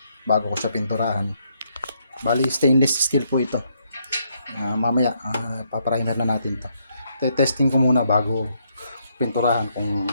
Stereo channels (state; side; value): inverted; both; correlation -0.74